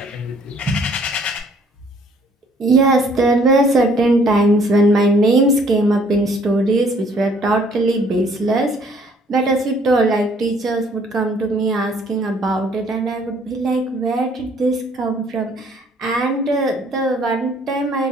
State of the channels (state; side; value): normal; both; correlation 0.60